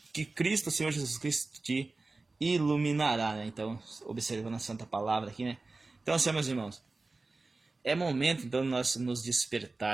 que Cristo, Senhor Jesus Cristo, te iluminará, né? Então, observando a santa palavra aqui, né? Então, assim, meus irmãos, é momento, então, de nós nos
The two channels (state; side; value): quieter; left; 3.5 dB